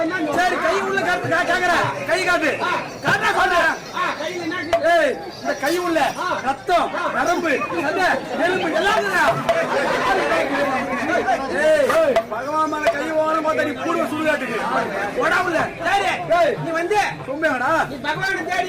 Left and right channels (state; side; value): identical; both; correlation 1.00